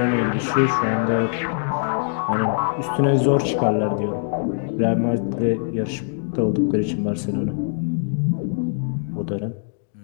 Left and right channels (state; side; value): silent; right; digital silence